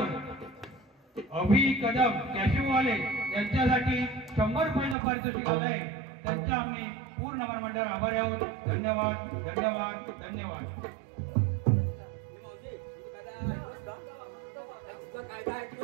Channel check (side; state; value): left; drops out; at 5.0 s